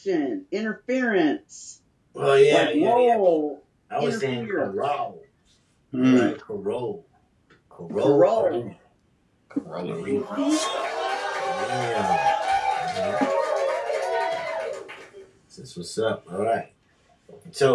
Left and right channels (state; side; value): identical; both; correlation 1.00